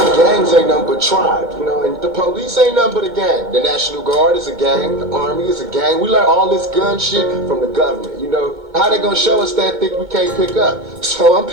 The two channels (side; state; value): left; late; 2.2 ms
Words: Gangs ain't nothing but tribes, you know, and the police ain't nothing but a gang. The National Guard is a gang, the Army is a gang. We learn all this gun shit from the government, you know? How they gonna show us that thing we can't pick up? So I'm